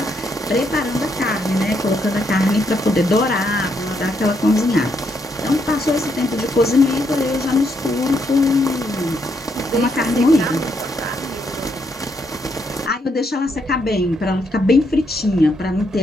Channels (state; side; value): normal; both; correlation 0.76